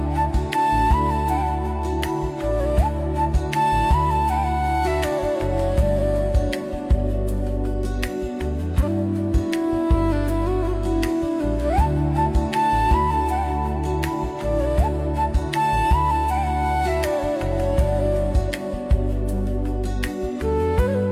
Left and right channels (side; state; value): both; identical; correlation 1.00